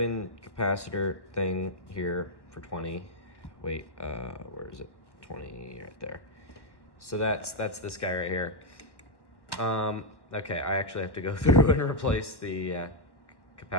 capacitor thing here for 20. Wait, where is it? 20 right there. So that's this guy right here. Okay, I actually have to go through and replace the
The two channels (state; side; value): late; right; 1.0 ms